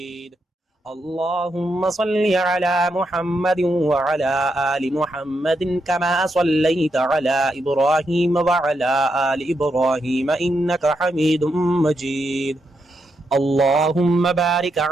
اللهم صل على محمد وعلى آل محمد كما صليت على إبراهيم وعلى آل إبراهيم إنك حميد مجيد. اللهم بارك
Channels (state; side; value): normal; both; correlation 0.82